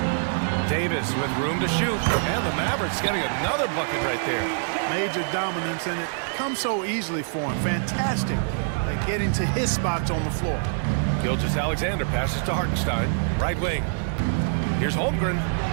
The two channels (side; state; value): left; silent; digital silence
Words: Davis with room to shoot, and the Mavericks getting another bucket right there. Major dominance, and it comes so easily for him. Fantastic at getting to his spots on the floor. Gilgeous-Alexander passes to Hartenstein, right wing. Here's Holmgren.